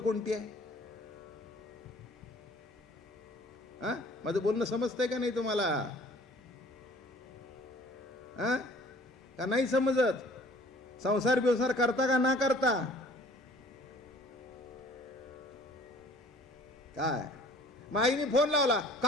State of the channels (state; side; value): normal; both; correlation 0.52